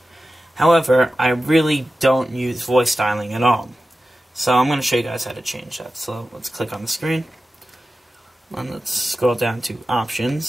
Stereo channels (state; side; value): normal; both; correlation 0.94